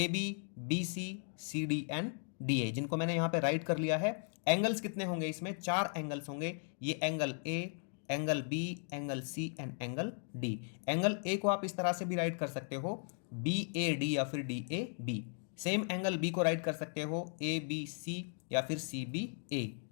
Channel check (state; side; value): silent; right; 53 dB below the other